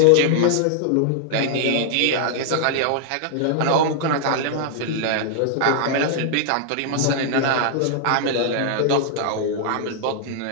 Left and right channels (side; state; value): both; different; correlation -0.01